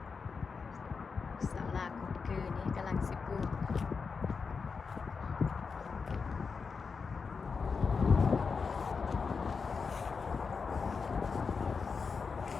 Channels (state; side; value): quieter; right; 5.2 dB